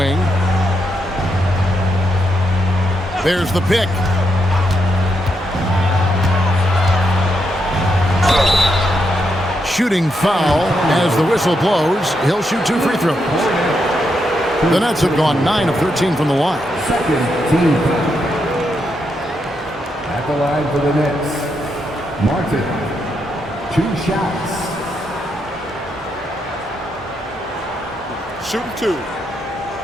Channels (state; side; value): normal; both; correlation 0.81